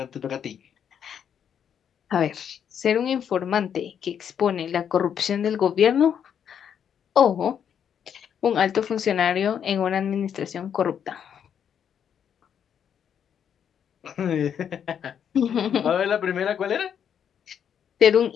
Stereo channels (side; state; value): right; quieter; 8.4 dB